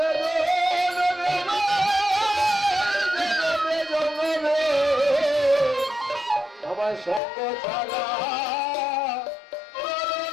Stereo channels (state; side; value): drops out; right; at 7.2 s